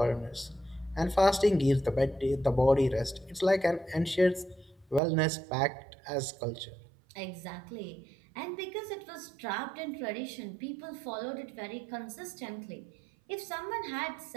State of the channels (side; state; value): left; drops out; at 5.0 s